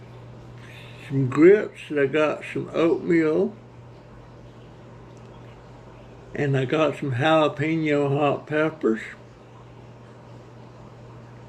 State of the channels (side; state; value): both; identical; correlation 1.00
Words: some grits, I got some oatmeal, and I got some jalapeno hot peppers.